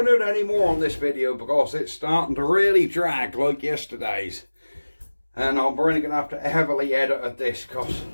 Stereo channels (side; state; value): both; inverted; correlation -1.00